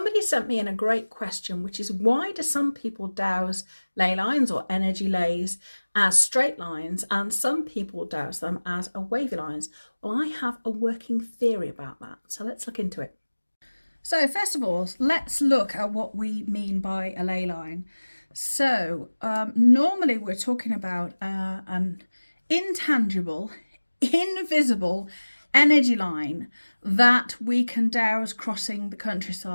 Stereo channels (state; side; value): inverted; both; correlation -1.00